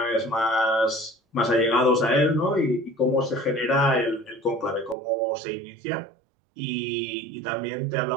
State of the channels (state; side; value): drops out; left; at 5.0 s